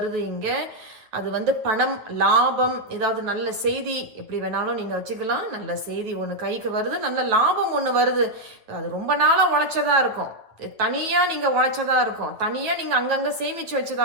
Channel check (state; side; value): late; left; 9.1 ms